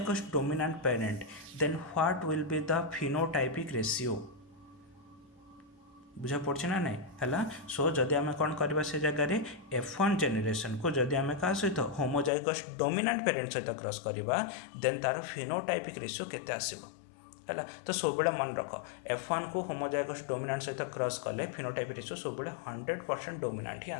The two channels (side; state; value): right; drops out; at 12.3 s